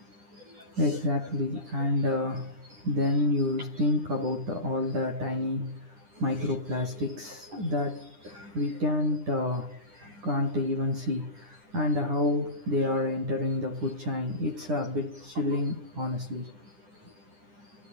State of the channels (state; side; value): late; left; 9.9 ms